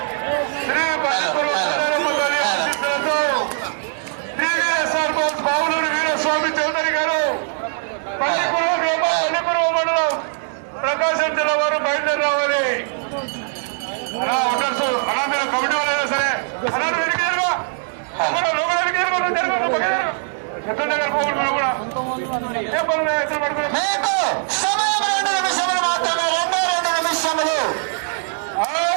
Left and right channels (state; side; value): silent; left; digital silence